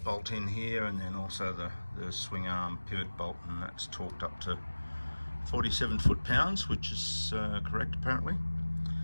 bolt in here, and then also the swing arm pivot bolt, and that's torqued up to 47 foot-pounds, which is correct apparently.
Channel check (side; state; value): both; inverted; correlation -1.00